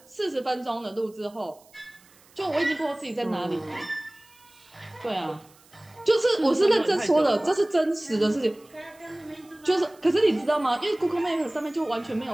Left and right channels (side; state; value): right; noise; hiss, 28 dB below the sound